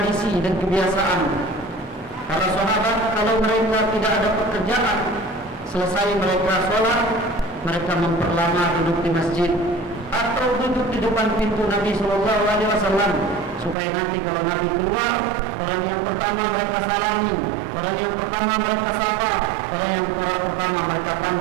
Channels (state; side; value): drops out; left; at 13.8 s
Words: dan kebiasaan para sahabat, kalau mereka tidak ada pekerjaan, selesai mereka sholat, mereka memperlama duduk di masjid atau duduk di depan pintu Nabi Sallallahu Alaihi Wasallam, supaya nanti kalau Nabi keluar, orang yang pertama mereka salami, orang yang pertama mereka sapa, orang yang pertama mereka